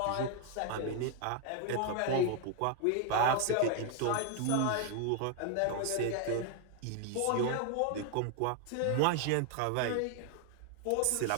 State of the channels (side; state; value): both; different; correlation 0.00